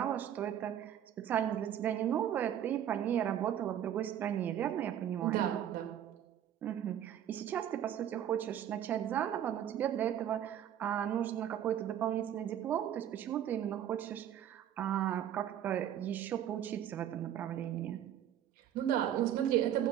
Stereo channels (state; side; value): quieter; left; 10.4 dB